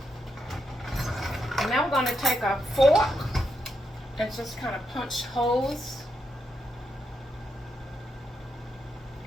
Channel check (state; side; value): normal; both; correlation 0.82